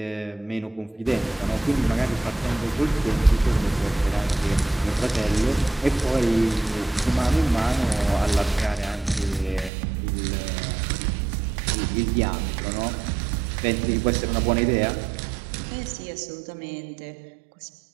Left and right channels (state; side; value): drops out; left; at 9.7 s